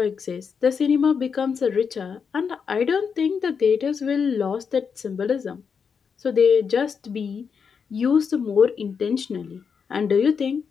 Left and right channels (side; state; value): right; quieter; 6.2 dB